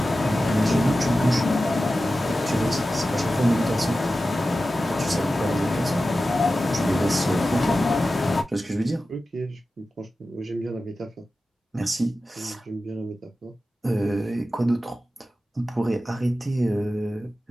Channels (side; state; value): both; normal; correlation 0.94